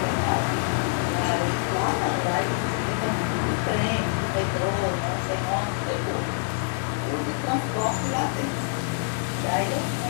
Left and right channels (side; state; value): right; silent; 61 dB below the other